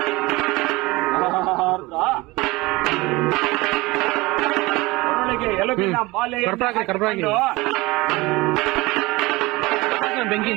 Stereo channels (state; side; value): quieter; left; 22.0 dB